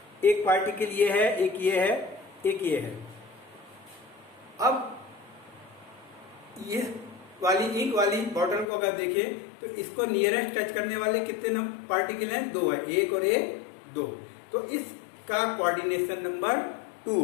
एक पार्टिकल ये है, एक ये है, एक ये है। अब ये वाली इंक वाली बॉटल को अगर देखें तो इसको नियरेस्ट टच करने वाले कितने पार्टिकल हैं? 2 है, एक और एक 2। तो इसका कोऑर्डिनेशन नंबर 2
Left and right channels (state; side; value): drops out; right; at 8.7 s